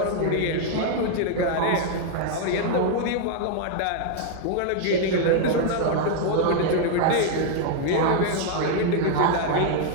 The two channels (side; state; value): both; different; correlation 0.00